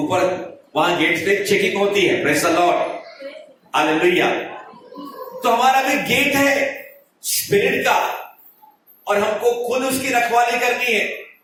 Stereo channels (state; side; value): identical; both; correlation 1.00